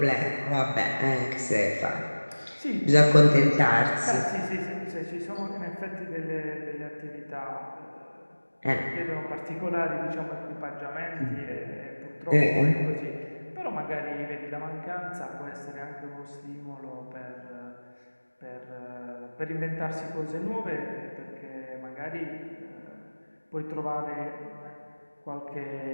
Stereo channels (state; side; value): inverted; both; correlation -1.00